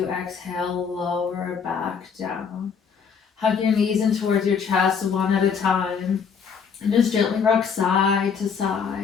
exhale, lower back down. Hug your knees in towards your chest one at a time. And just gently rock side to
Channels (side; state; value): right; quieter; 6.4 dB